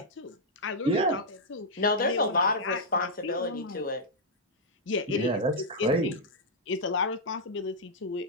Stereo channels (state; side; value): normal; both; correlation -0.07